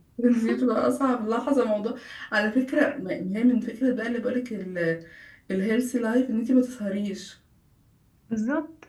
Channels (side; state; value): both; identical; correlation 1.00